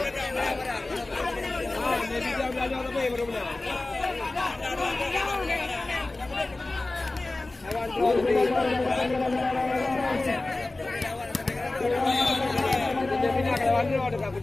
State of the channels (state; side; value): quieter; right; 3.0 dB